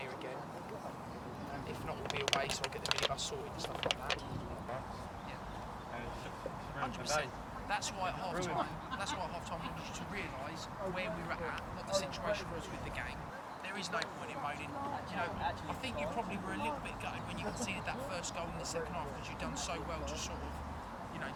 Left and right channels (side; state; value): both; identical; correlation 1.00